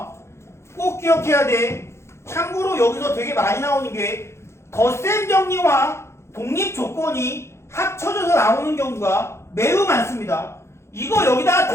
꼭 기억해야 돼. 참고로 여기서 되게 많이 나오는 게 덧셈 정리와 독립 조건이 합쳐져서 나오는 경우가 매우 많습니다. 이거 여기다가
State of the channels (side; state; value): right; late; 0.13 ms